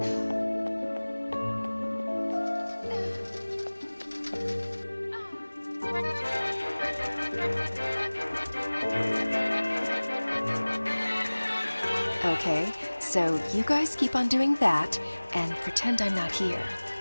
Okay, so you guys keep on doing that and pretend I'm not here.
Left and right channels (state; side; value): inverted; both; correlation -1.00